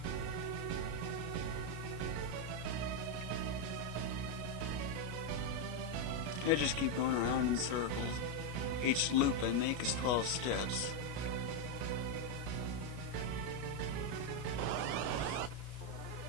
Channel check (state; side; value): late; left; 33 ms